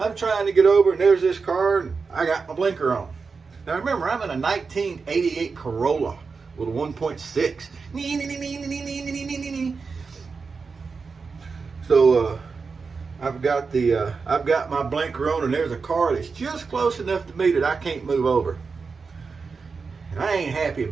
trying to get over, and there's this car, and I got my blinker on. Now remember, I'm in a 1988 Corolla with a 1.6. So I've got my blinker on, and there's a car that's just close enough to me that I can't move over. And I ain't happy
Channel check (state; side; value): quieter; left; 4.9 dB